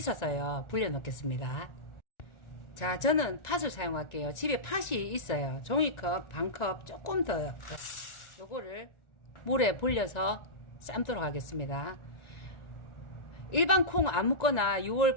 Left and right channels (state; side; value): late; right; 1.4 ms